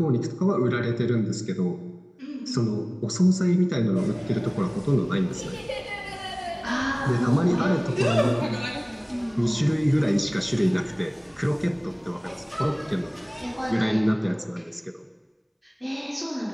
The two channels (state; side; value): identical; both; correlation 1.00